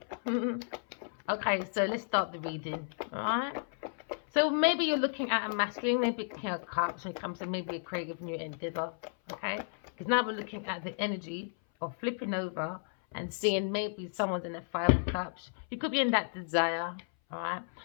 Okay, so let's start the reading. Alright. So maybe you're looking at a masculine, maybe King of Cups when it comes to maybe a creative new endeavor. Okay? Because now we're looking at the energy of flipping over and seeing maybe someone's in the Five of Cups. You could be in that desire. Alright?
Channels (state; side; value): silent; right; 56 dB below the other